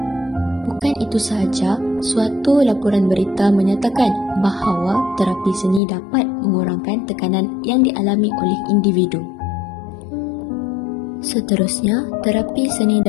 Bukan itu sahaja, suatu laporan berita menyatakan bahawa terapi seni dapat mengurangkan tekanan yang dialami oleh individu. Seterusnya, terapi seni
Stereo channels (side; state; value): right; drops out; at 5.8 s